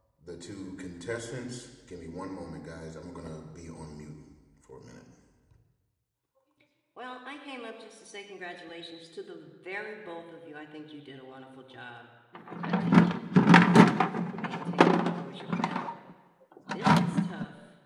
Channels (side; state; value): both; identical; correlation 1.00